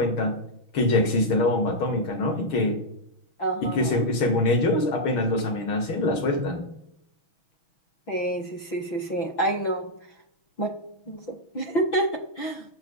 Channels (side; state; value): right; late; 6.5 ms